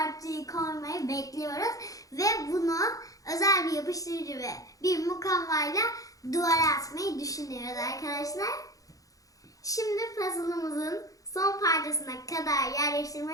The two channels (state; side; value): late; right; 0.17 ms